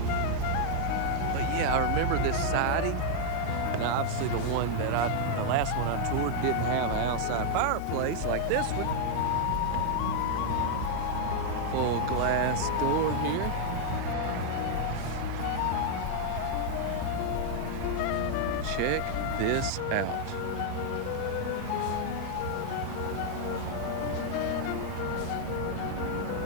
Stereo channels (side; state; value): both; different; correlation 0.00